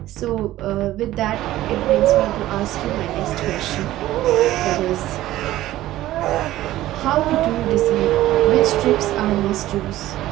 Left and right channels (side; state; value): left; quieter; 15.1 dB